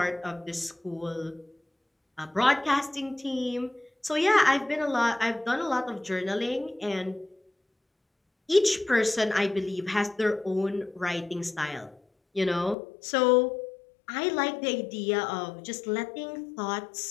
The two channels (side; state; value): right; drops out; at 12.8 s